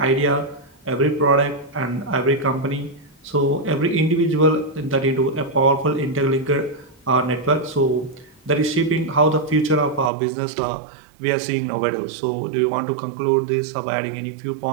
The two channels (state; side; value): drops out; left; at 10.1 s